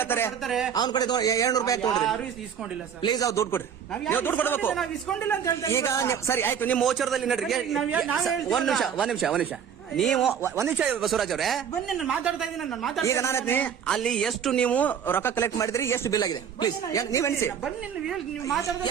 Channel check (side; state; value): left; quieter; 7.9 dB